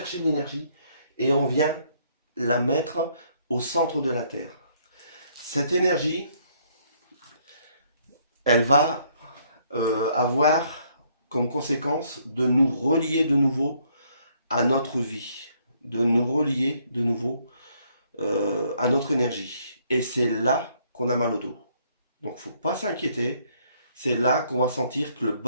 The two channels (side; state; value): both; inverted; correlation -0.67